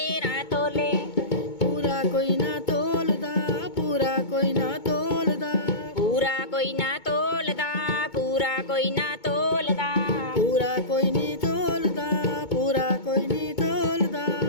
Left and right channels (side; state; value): right; late; 2.2 ms